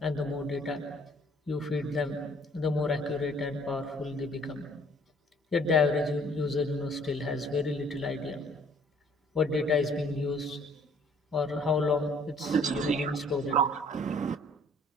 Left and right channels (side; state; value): both; normal; correlation 0.59